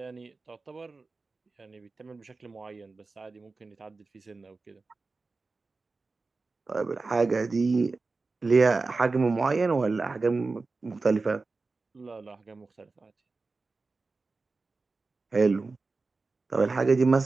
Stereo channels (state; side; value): quieter; left; 3.9 dB